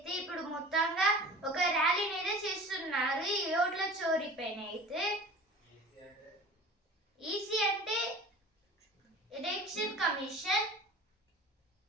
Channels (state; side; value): normal; both; correlation 0.40